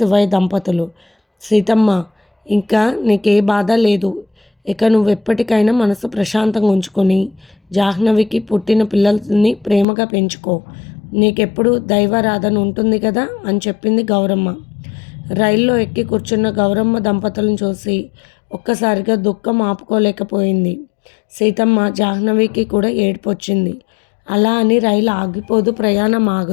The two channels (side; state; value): right; drops out; at 9.9 s